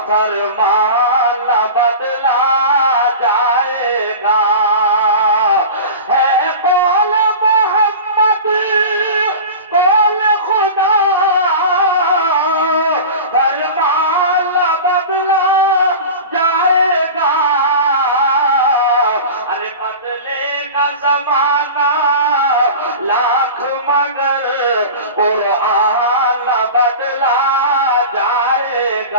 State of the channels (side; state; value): both; inverted; correlation -0.33